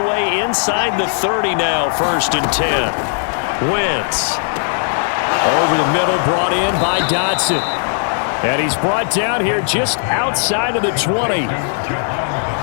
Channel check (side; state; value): right; silent; digital silence